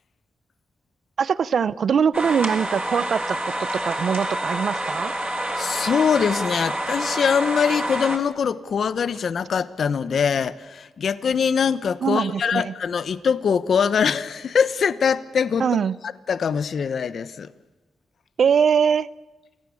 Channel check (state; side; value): normal; both; correlation 0.77